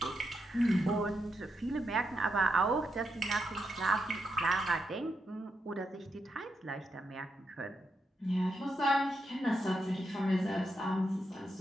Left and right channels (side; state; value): both; normal; correlation 0.83